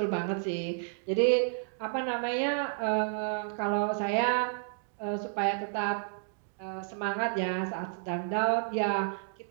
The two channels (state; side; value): silent; left; digital silence